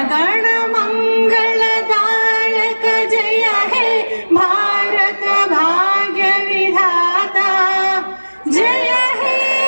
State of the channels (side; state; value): both; inverted; correlation -1.00